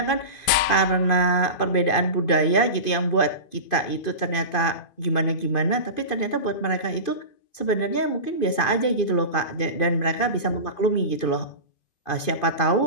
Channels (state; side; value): late; right; 2.5 ms